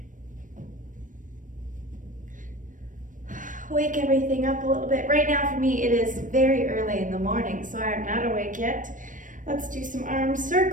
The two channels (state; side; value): late; left; 0.38 ms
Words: Wake everything up a little bit. Right now for me, it is very early in the morning, so I'm not awake yet. Let's do some arm